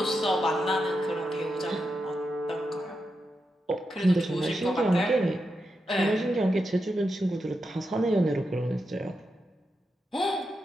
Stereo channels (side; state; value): both; normal; correlation 0.87